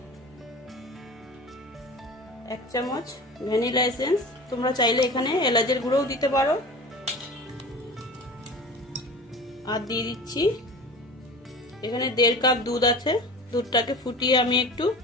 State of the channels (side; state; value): both; normal; correlation 0.36